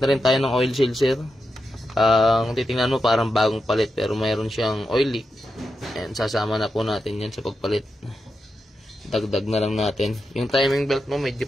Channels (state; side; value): normal; both; correlation 0.88